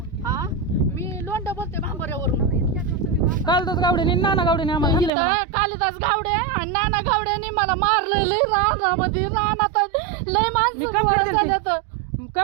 केला हा मी लोंढा बोलते भांबऱ्यावरून इतक्या दिवस तुम्ही कालच गावडीने नाना गावडीने आम्हाला हाणलंय म्हणा. इथं कालिदास गावडे आणि नाना गावड्याने मला मारलंय लय रानामध्ये रानात लय माणसं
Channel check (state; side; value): drops out; left; at 5.1 s